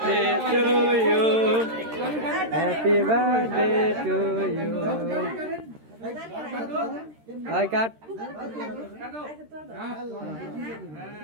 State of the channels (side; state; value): left; late; 13 ms